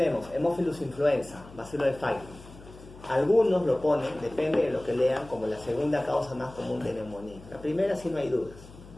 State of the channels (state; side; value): noise; left; hum, 19 dB below the sound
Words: Haemophilus influenza, bacilo de Pfeiffer. Algunos lo ponen, depende de lo que lean, como la segunda causa más común de neumonía. La primera sí no hay dudas.